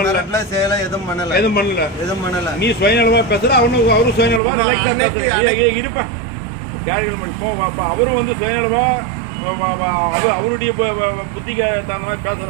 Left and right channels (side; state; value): left; drops out; at 4.4 s